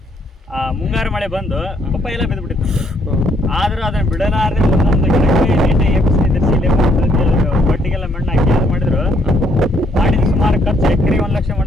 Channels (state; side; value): normal; both; correlation 0.69